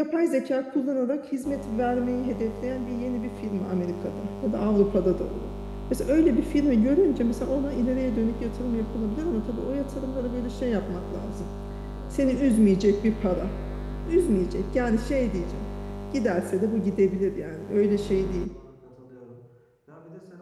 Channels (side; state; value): both; identical; correlation 1.00